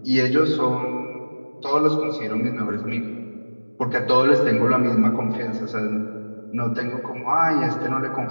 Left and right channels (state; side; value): inverted; both; correlation -1.00